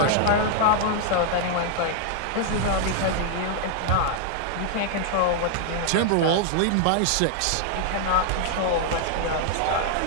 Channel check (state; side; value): different; both; correlation 0.00